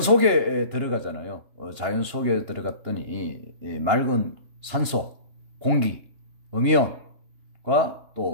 들어가잖아요. 자연 속에 들어갔더니 맑은 산소, 공기, 음이온과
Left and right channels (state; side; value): late; left; 2.9 ms